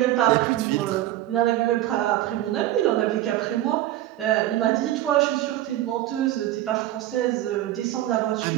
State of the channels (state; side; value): quieter; left; 14.1 dB